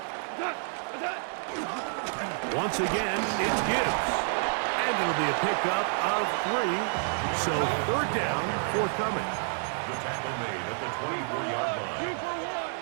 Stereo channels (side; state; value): left; silent; 58 dB below the other